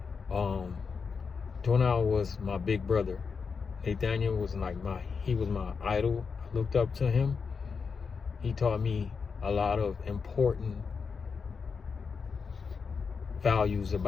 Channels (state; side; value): quieter; right; 5.5 dB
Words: Donald was my big brother. Nathaniel was he was my idol. I looked up to him. He taught me a lot of important values